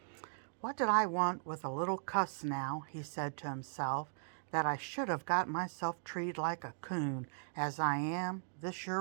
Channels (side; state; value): left; silent; digital silence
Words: "What did I want with a little cuss now," he said to himself, "that I should have got myself treated like a coon as I am, this